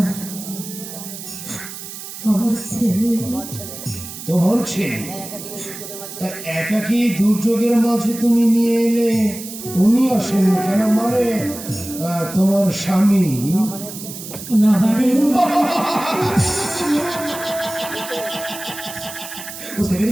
আমার ছেলে। তোমার ছেলে? তা একাকী দুর্যোগের মাঝে তুমি নিয়ে এলে, উনি আসেননি কেন? মানে তোমার স্বামী? না মানে বুঝতে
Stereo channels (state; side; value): noise; right; hiss, 11 dB below the sound